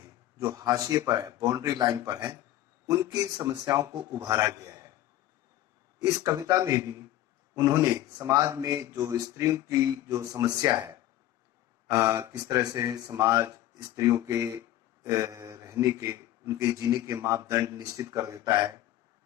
जो हाशिए पर है, बाउंड्री लाइन पर है, उनकी समस्याओं को उभारा गया है। इस कविता में भी उन्होंने समाज में जो स्त्रियों की जो समस्या है, किस तरह से समाज स्त्रियों के रहने के, उनके जीने के मापदंड निश्चित कर देता है।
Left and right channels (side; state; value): right; quieter; 13.7 dB